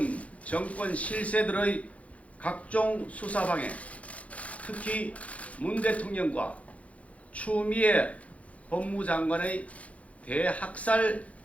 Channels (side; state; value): right; late; 0.066 ms